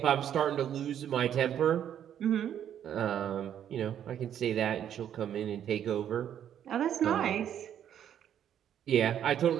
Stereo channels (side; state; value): left; quieter; 9.8 dB